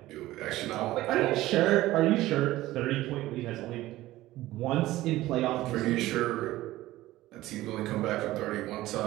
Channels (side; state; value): left; quieter; 16.4 dB